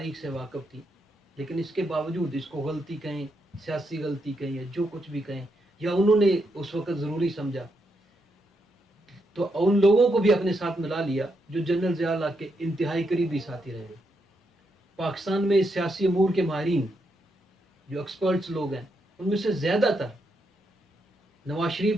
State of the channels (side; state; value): both; normal; correlation 0.81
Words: سے واقف تھی، لیکن اس کے باوجود اس کو غلطی کہیں، سیاسی غلطی کہیں یا جو کچھ بھی کہیں، یا انہوں نے اس وقت ضروری سمجھا، تو ان لوگوں کو بھی اپنے ساتھ ملا لیا جو جنرل ضیاء الحق کے انتہائی قریبی ساتھی رہے۔ پاکستان میں سیاسی امور کے ماہرین جو ایکسپرٹس لوگ ہیں، ان میں سے زیادہ تر نواز